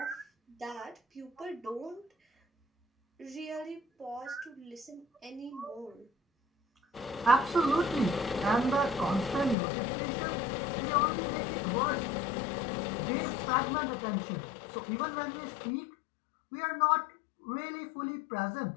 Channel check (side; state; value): right; drops out; at 9.6 s